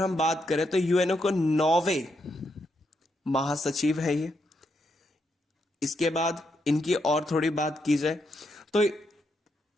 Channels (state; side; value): normal; both; correlation 0.80